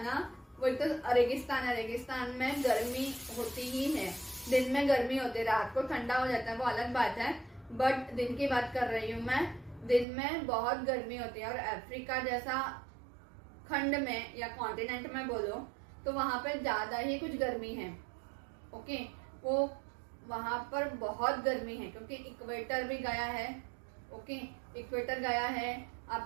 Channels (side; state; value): left; drops out; at 10.1 s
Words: ना, वो एक तो रेगिस्तान है, रेगिस्तान में गर्मी होती ही है, दिन में गर्मी होती है, रात को ठंडा हो जाता है, वो अलग बात है, बट दिन की बात कर रही हूँ मैं। दिन में बहुत गर्मी होती है, और अफ्रीका जैसा खंड में या कॉन्टिनेंट में बोलो तो वहां पर ज्यादा ही कुछ गर्मी है, ओके। वो वहां पर बहुत गर्मी है क्योंकि इक्वेटर भी गया है, ओके, इक्वेटर गया है,